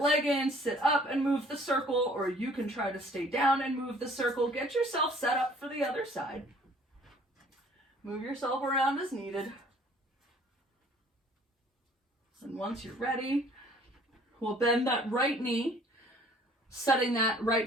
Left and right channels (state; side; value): normal; both; correlation 0.55